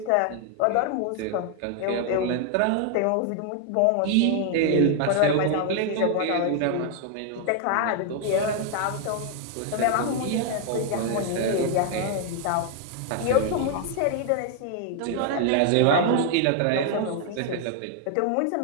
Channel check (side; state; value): both; different; correlation 0.00